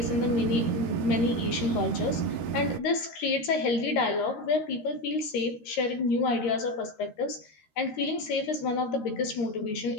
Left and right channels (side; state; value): right; late; 13 ms